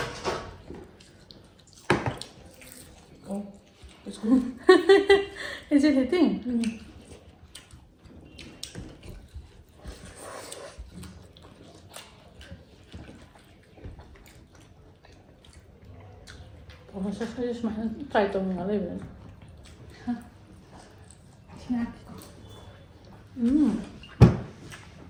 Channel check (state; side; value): identical; both; correlation 1.00